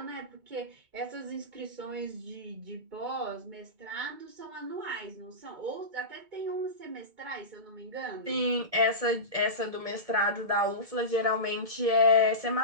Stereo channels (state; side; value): late; left; 2.2 ms